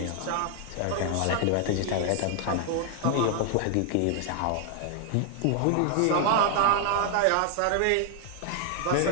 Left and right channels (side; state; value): both; different; correlation 0.00